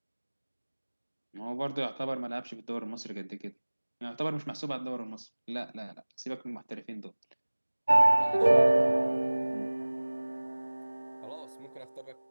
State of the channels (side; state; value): both; inverted; correlation -1.00